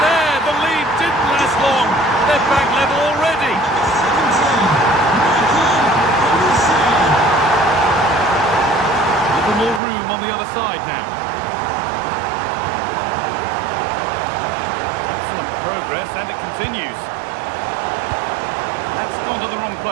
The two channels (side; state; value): left; drops out; at 9.8 s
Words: there. The lead didn't last long. They're back level already. A little more room on the other side now. Excellent progress, and it continues. That's gone to the wrong